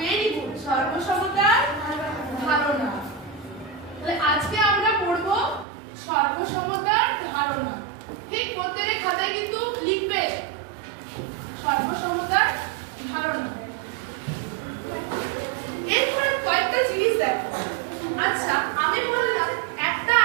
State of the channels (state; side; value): drops out; left; at 5.7 s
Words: গুড। সর্বসমতার ধারণা। তাহলে আজকে আমরা পড়ব সর্বসমতার ধারণা, ঠিক? প্রত্যেকের খাতায় কিন্তু লিখবে সর্বসমতার ধারণা। এরপরে কয়েকটা জিনিস দেখো। আচ্ছা আমি বললাম একটা